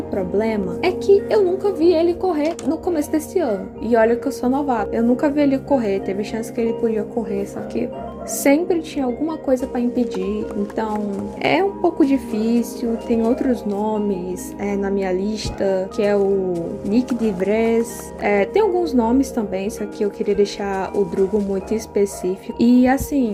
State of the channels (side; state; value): both; identical; correlation 1.00